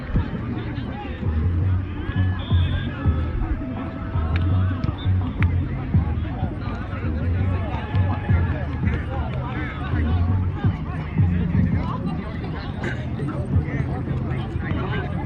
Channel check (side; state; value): both; identical; correlation 1.00